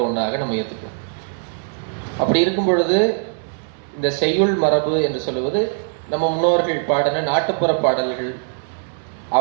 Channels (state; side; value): silent; left; 65 dB below the other